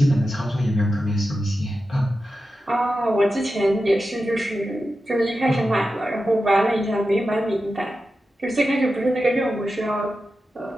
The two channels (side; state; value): both; normal; correlation 0.91